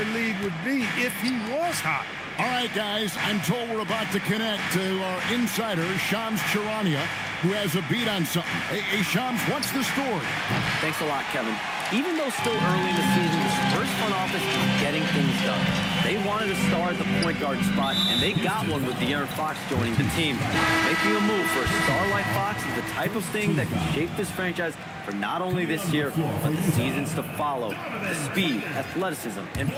lead would be if he was hot. All right, guys, I'm told we're about to connect to our insider, Shams Charania, who has a beat on something. Hey, Shams, what's the story? Thanks a lot, Kevin. Even though still early in the season, the Spurs front office is getting things done. They wanted a star at the point guard spot, and they got one with De'Aaron Fox joining the team. Making a move for a star like Fox is the type of thing that can shape this franchise for not only this year, but the seasons to follow. The speed, athleticism, and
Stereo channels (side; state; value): both; identical; correlation 1.00